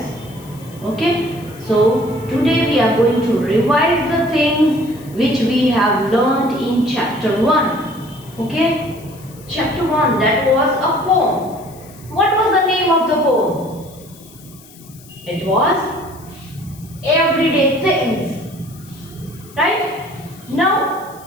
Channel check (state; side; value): noise; left; hiss, 23 dB below the sound